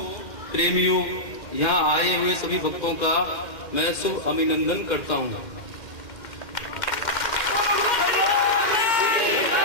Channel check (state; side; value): late; right; 2.1 ms